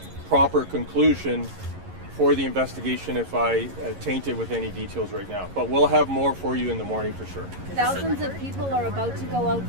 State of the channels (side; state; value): left; late; 11 ms